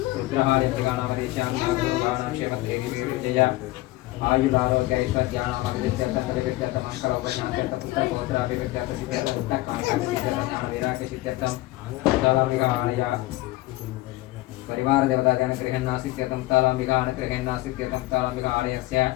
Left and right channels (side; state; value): right; quieter; 18.6 dB